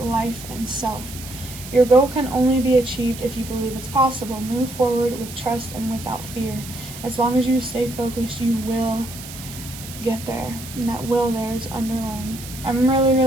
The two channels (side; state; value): right; noise; hiss, 13 dB below the sound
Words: and self. Your goal can only be achieved if you believe it's possible. Move forward with trust and without fear. As long as you stay focused, you will get there. And that will there is underlined. I'm really,